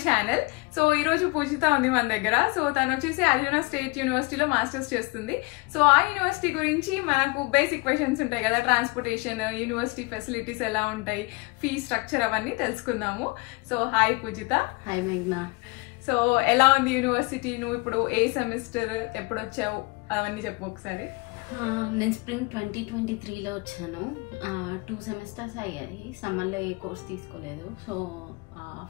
channel. So ee roju Pujita undi మన దగ్గర. సో తను వచ్చేసి అరిజోనా స్టేట్ యూనివర్సిటీలో మాస్టర్స్ చేస్తుంది. సో ఆ యూనివర్సిటీ గురించి మనకు బేసిక్ క్వశ్చన్స్ ఉంటాయి కదా, ట్రాన్స్పోర్టేషన్, యూనివర్సిటీ ఫెసిలిటీస్ ఎలా ఉంటాయి, ఫీ స్ట్రక్చర్ అవన్నీ తెలుసుకుందాము. సో హాయ్ పూజిత. హాయ్ మేఘ్నా. సో ఎలా ఉంది యూనివర్సిటీ? నువ్వు ఇప్పుడు ఏ సెమిస్టర్, ఎప్పుడు వచ్చావు, అవన్నీ చెప్పు ఒకసారి. నేను స్ప్రింగ్ 2023లో వచ్చాను. 2 సెమిస్టర్స్ అయ్యాయి. సమ్మర్లో ఏ కోర్స్ తీసుకోలేదు. సో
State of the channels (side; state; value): right; quieter; 26.3 dB